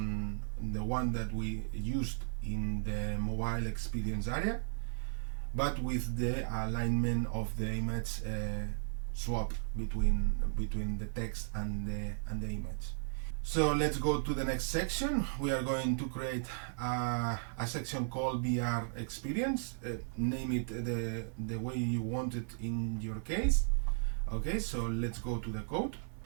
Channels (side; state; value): left; silent; 54 dB below the other